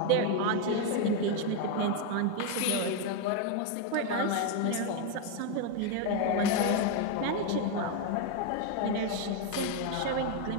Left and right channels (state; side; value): different; both; correlation 0.01